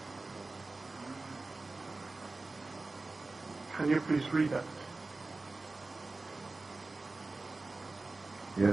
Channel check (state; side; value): quieter; left; 3.4 dB